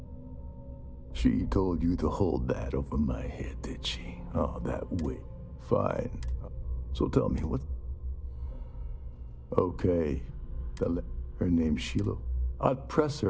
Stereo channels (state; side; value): identical; both; correlation 1.00